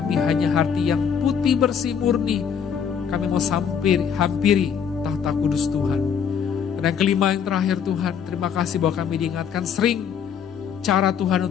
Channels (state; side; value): quieter; right; 7.5 dB